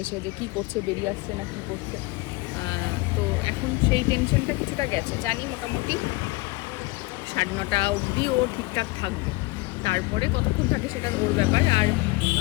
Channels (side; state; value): right; quieter; 22.7 dB